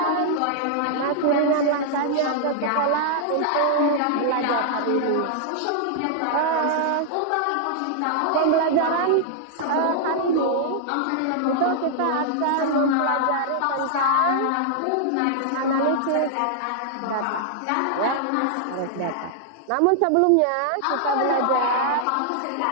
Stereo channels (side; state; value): both; different; correlation -0.01